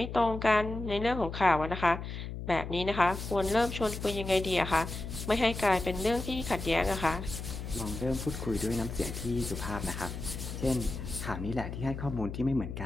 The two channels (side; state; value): left; noise; hum, 7 dB below the sound